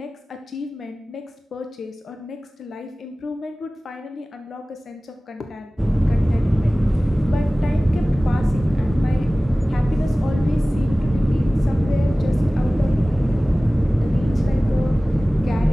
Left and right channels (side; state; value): both; normal; correlation 0.98